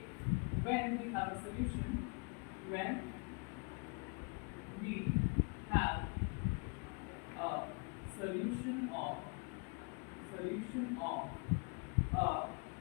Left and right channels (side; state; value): right; quieter; 36.2 dB